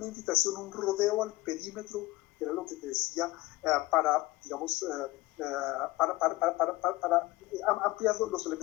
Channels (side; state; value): right; quieter; 19.6 dB